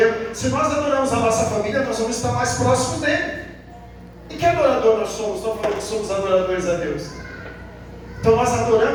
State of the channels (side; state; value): both; identical; correlation 1.00